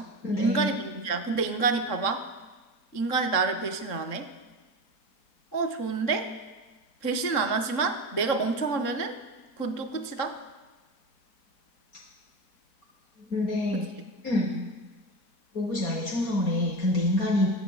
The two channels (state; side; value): late; right; 3.7 ms